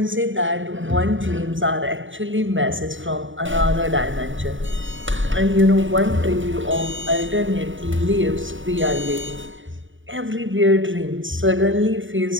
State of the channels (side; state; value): left; late; 0.56 ms